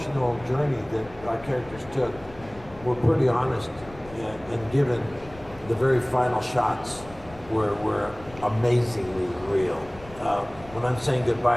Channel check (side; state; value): left; noise; rumble, 19 dB below the sound